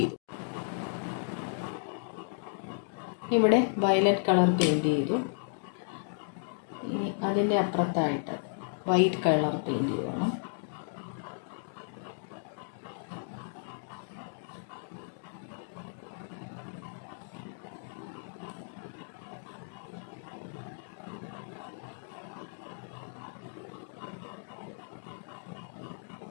ഇവിടെ വയലറ്റ് കളർ പെയിൻറ് ചെയ്തു. ഇനി അതിൻ്റെ അപ്പുറത്തായിട്ട് വൈറ്റ് കളർ പെയിൻറ് ചെയ്യണം.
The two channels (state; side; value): silent; right; digital silence